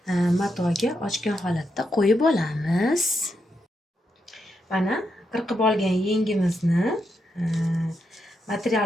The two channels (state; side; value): normal; both; correlation 0.83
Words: matoga ochgan holatda qo'yib olamiz. Mana qirqib olgan yengimizni